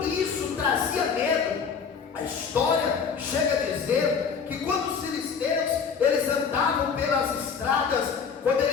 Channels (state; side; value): quieter; right; 6.2 dB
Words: isso trazia medo. A história chega a dizer que quando os filisteus, eles andavam pelas estradas, quando